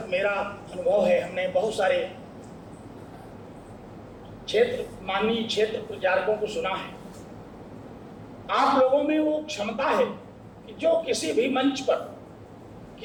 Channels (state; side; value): identical; both; correlation 1.00